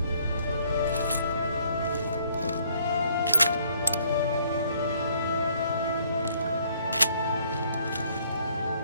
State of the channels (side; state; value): both; inverted; correlation -0.64